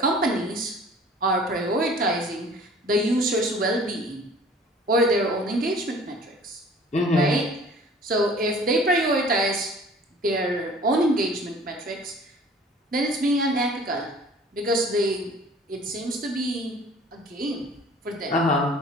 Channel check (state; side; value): normal; both; correlation 0.49